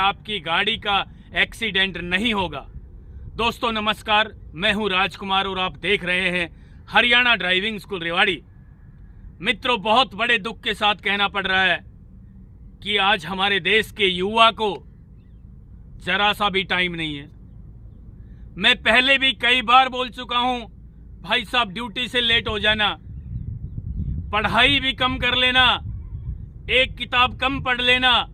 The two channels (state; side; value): identical; both; correlation 1.00